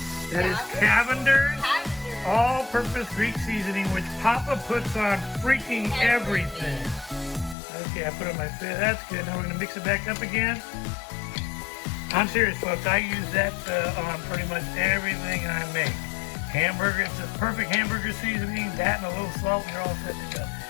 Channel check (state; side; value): drops out; right; at 7.6 s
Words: That is Cavender's all-purpose Greek seasoning, which Papa puts on freaking everything. Okay, I put it on my face. That's good. Now we're going to mix it back up again. I'm serious, folks. I use that on pretty much everything I make. Hamburger, it's a perfect hamburger seasoning. That and a little salt, and you're all set to go.